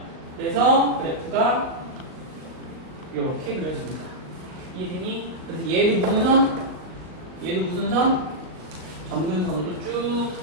그래서 그래프가 이렇게 그려집니다. 이해되니? 그래서 얘도 무슨 선? 얘도 무슨 선? 점근선으로 쭉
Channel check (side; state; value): left; late; 38 ms